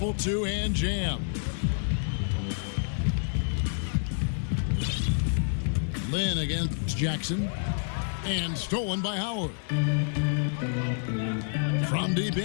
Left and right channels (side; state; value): right; silent; 59 dB below the other